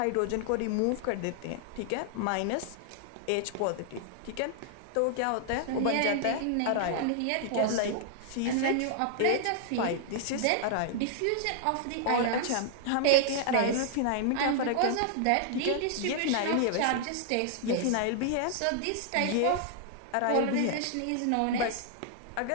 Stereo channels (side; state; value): both; different; correlation -0.01